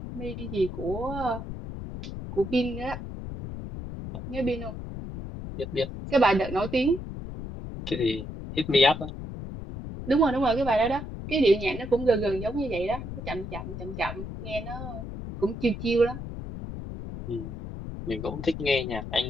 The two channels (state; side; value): noise; left; rumble, 8 dB below the sound